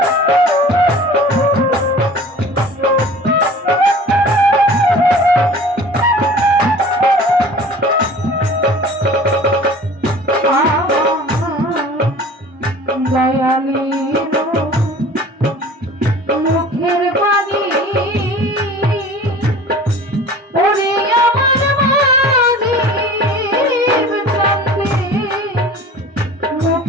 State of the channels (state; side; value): normal; both; correlation 0.43